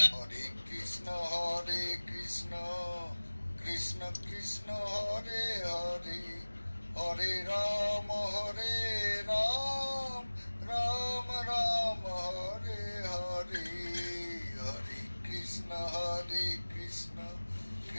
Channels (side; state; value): both; inverted; correlation -1.00